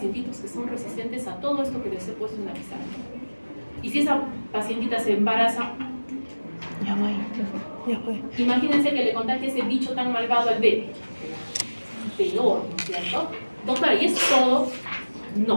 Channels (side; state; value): both; inverted; correlation -1.00